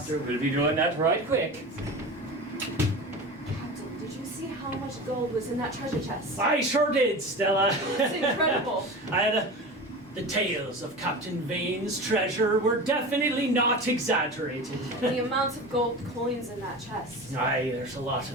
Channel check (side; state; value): both; normal; correlation 0.30